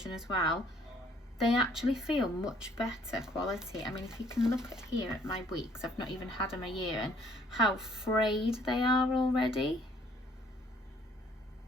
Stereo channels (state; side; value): normal; both; correlation 0.61